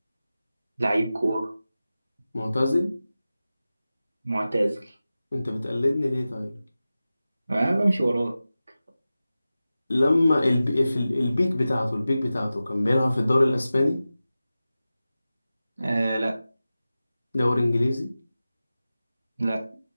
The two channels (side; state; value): both; inverted; correlation -0.95